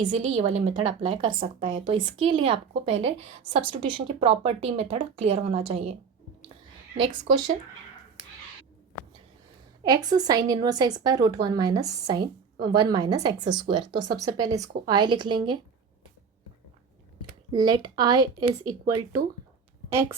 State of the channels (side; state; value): left; quieter; 5.9 dB